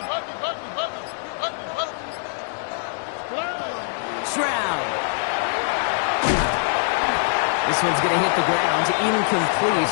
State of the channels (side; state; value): right; silent; digital silence